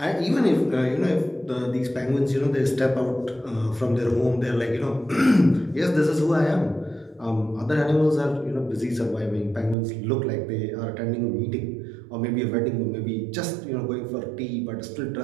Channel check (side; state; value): left; drops out; at 9.8 s